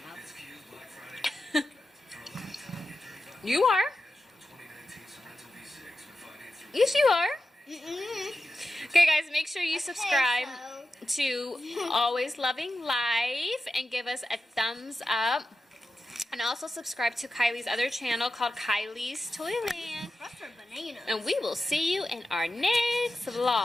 You are. Yes, you are. Okay, guys, make sure you subscribe to Always Loving Life and give us a thumbs up. And also subscribe to Kylie's other channel called Kylie's Toyland. That's for banana. And we will see you in our next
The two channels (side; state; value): both; normal; correlation 0.92